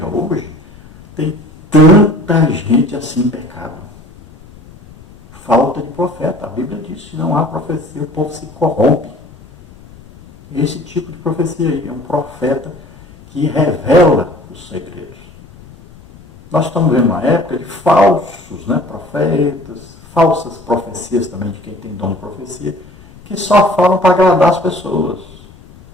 hoje tem tanta gente assim em pecado. Falta de profeta. A Bíblia diz que não há profecia, o povo se corrompe. Esse tipo de profecia aí é um profeta que revela os segredos. Nós estamos vendo uma época de falsos profetas, falsas profecias também de quem tem dom de profecia, que só falam para agradar as pessoas.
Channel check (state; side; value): noise; left; rumble, 22 dB below the sound